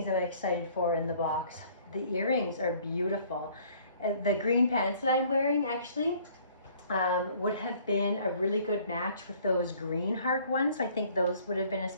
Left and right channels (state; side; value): inverted; both; correlation -0.57